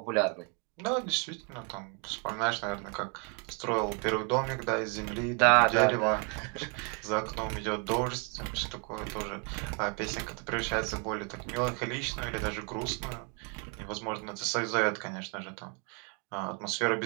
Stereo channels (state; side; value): quieter; left; 34.5 dB